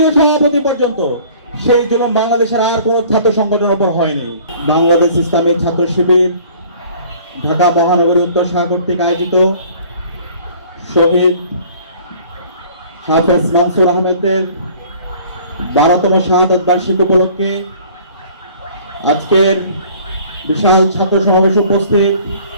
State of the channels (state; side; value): inverted; both; correlation -0.51